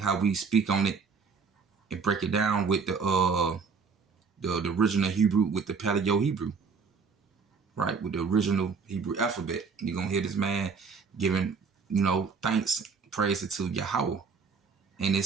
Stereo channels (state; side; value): quieter; left; 5.3 dB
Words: we speak on it and break it down with the original Hebrew, with the Paleo Hebrew, right? With the original Hebrew alphabet. You're going to hear this man giving, thanks, praise to Yahweh in